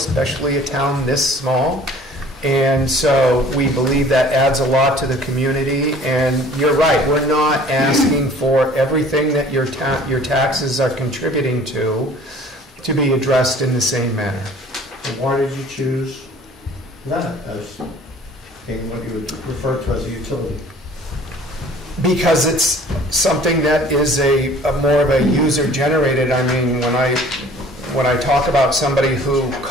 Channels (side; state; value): both; normal; correlation 0.51